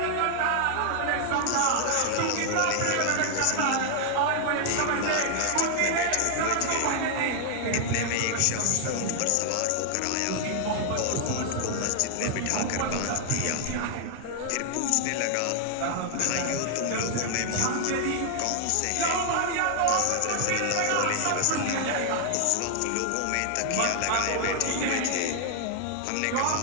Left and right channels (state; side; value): different; both; correlation 0.00